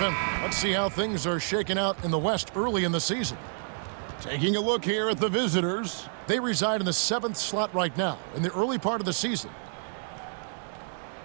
Let's see how things are shaking out in the West early in the season. Taking a look here at the visitors. They reside in the 7th slot right now in the early part of the season.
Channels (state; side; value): silent; left; 59 dB below the other